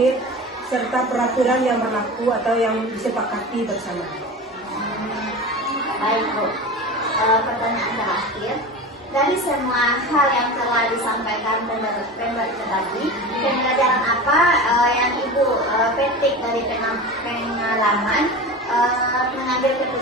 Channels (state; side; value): normal; both; correlation 0.30